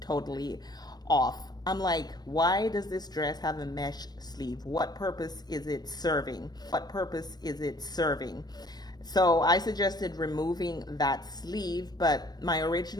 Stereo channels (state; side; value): late; right; 0.19 ms